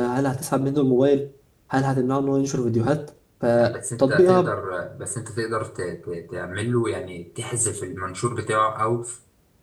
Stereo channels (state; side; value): identical; both; correlation 1.00